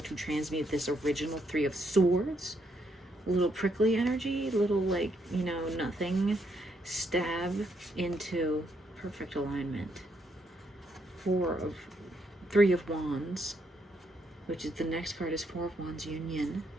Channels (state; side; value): normal; both; correlation 0.75